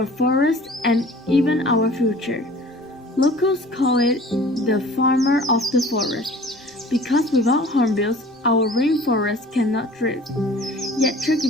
forest, and even our future. Locals call it the farmer of the forest, because without hornbills, our rainforest cannot thrive. Yet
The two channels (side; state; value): both; normal; correlation 0.46